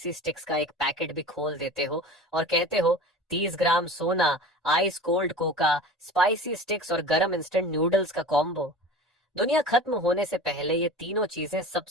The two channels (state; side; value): normal; both; correlation 0.37